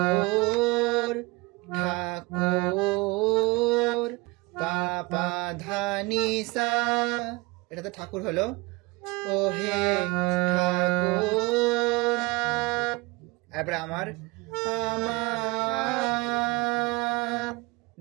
ঠাকুর পা পা ধা নি সা, এটা তো ঠাকুর হলো। ও হে ঠাকুর, তারপরে আমার আমার,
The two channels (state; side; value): quieter; left; 24.6 dB